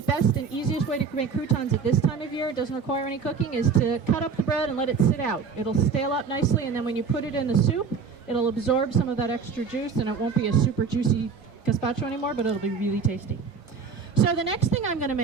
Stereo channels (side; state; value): left; quieter; 5.7 dB